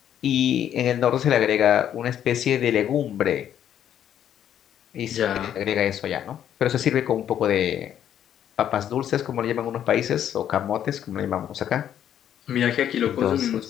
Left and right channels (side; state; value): right; quieter; 10.1 dB